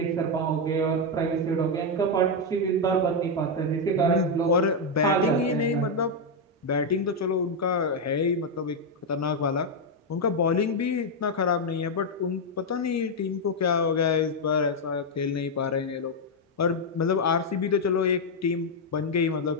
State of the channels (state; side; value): normal; both; correlation 0.02